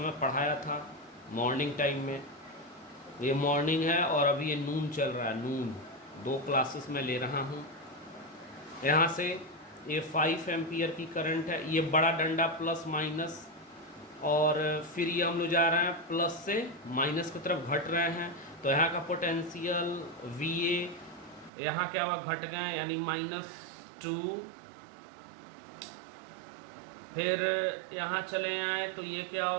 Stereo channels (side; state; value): left; drops out; at 21.5 s